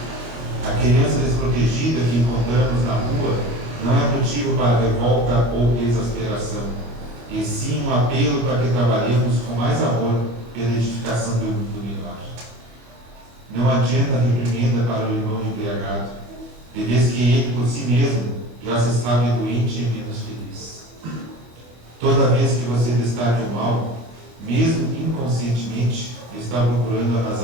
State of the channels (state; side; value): late; left; 24 ms